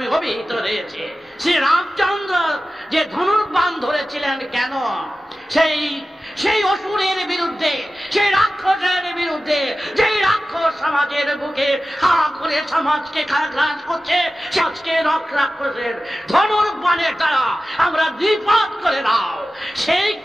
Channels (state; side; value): normal; both; correlation 0.94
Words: অভিহিত রয়েছে। শ্রী রামচন্দ্র যে ধনুর্বাণ ধরেছিলেন কেন? সেই অসুরের বিরুদ্ধে, সেই রাক্ষসের বিরুদ্ধে, যেই রাক্ষস সমাজের বুকে হা করে সমাজকে গ্রাস করছে, সমাজকে রাক্ষসের ধনুর্বাণের দ্বারা আমরা দ্বিপাত করে দাও, সেই